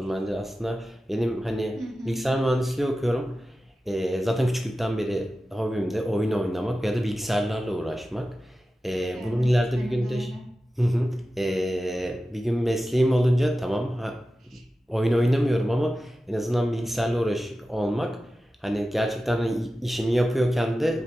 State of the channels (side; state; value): both; normal; correlation 0.94